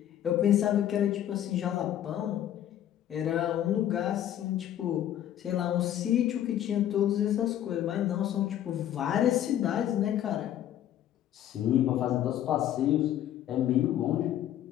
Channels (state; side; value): quieter; right; 11.4 dB